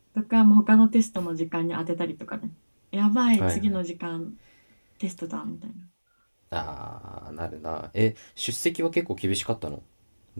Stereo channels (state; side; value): inverted; both; correlation -1.00